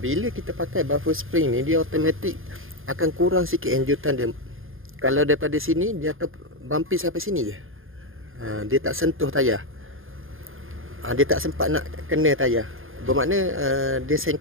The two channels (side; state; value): left; late; 0.60 ms